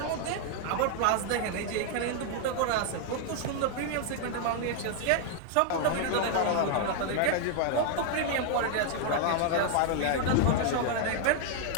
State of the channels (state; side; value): different; both; correlation 0.00